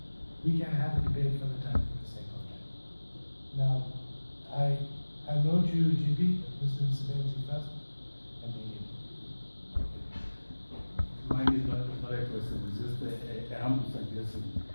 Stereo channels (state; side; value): inverted; both; correlation -1.00